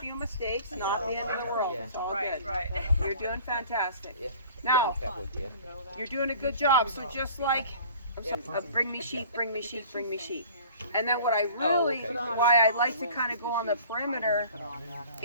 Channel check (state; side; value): inverted; both; correlation -0.47